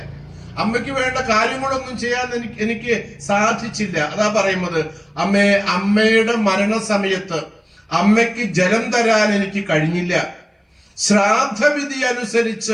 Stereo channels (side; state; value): both; identical; correlation 1.00